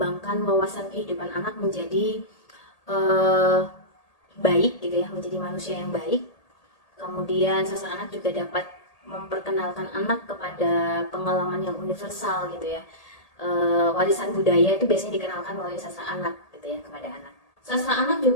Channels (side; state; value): right; late; 1.8 ms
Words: wawasan kehidupan anak menjadi baik gitu ya, menjadi manusia yang baik. Kemudian sastra anak juga dapat memperkenalkan anak kepada pengalaman yang universal gitu ya. Warisan budaya itu biasanya dikenalkan melalui sastra anak gitu ya kepada anak. Sastra anak